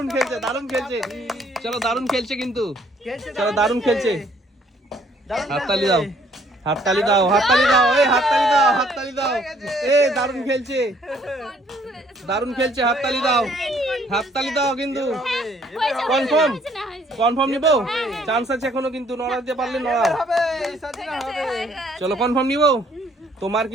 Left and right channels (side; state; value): both; normal; correlation 0.63